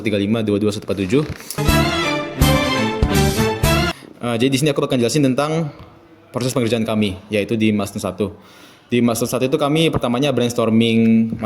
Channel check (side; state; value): both; identical; correlation 1.00